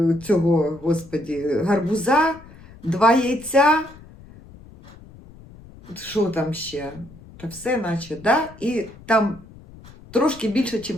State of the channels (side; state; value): left; noise; rumble, 21 dB below the sound